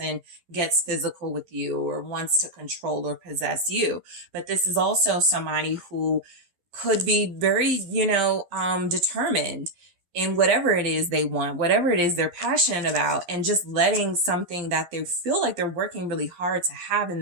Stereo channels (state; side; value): late; left; 11 ms